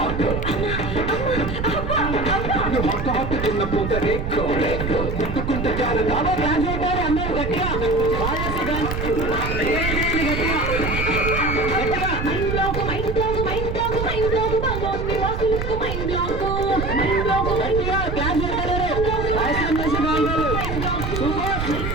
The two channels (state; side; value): noise; right; rumble, 4 dB below the sound